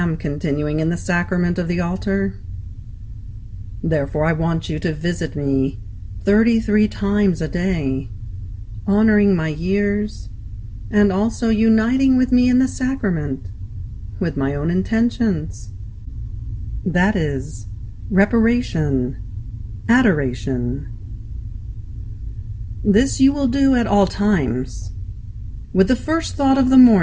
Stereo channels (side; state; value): both; identical; correlation 1.00